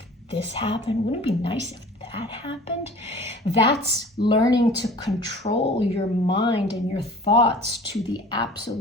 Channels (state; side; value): normal; both; correlation 0.44